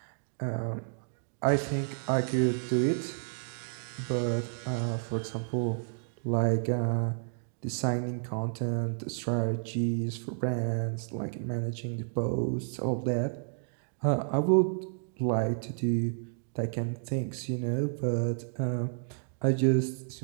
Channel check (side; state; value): left; silent; digital silence